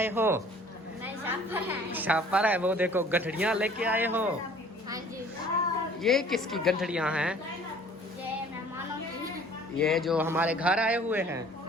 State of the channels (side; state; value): both; normal; correlation 0.52